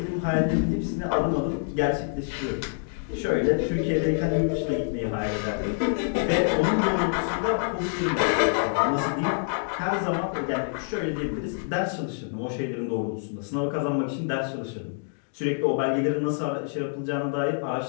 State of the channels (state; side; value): silent; right; digital silence